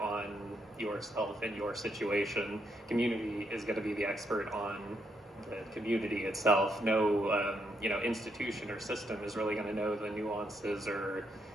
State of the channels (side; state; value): both; normal; correlation 0.77